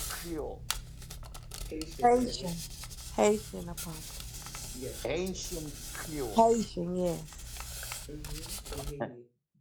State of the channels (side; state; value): both; identical; correlation 1.00